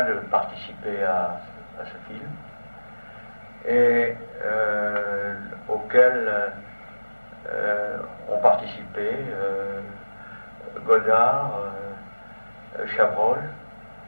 de participer à ce film, et auquel ont participé Godard, Chabrol,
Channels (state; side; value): inverted; both; correlation -1.00